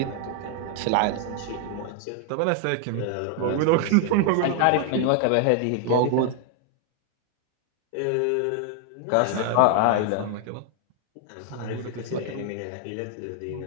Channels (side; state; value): both; different; correlation 0.00